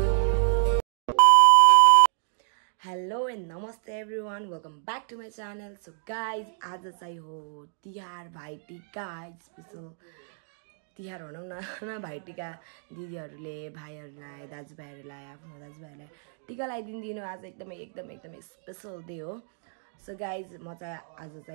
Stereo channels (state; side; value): silent; left; digital silence